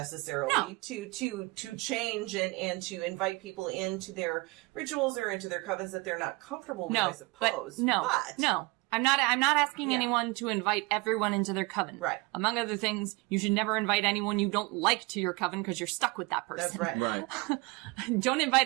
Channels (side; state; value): left; quieter; 25.8 dB